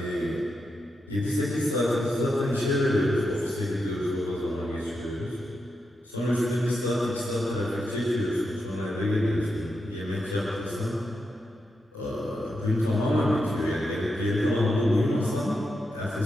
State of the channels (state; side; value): normal; both; correlation 0.85